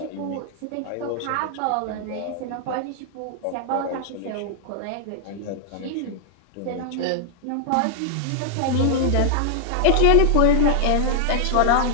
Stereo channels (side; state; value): both; different; correlation -0.01